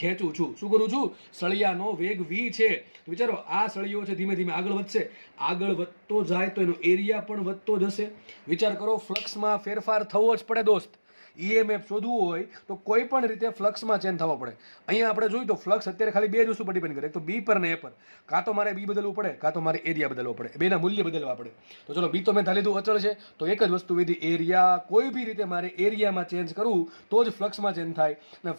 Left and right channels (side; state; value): both; inverted; correlation -1.00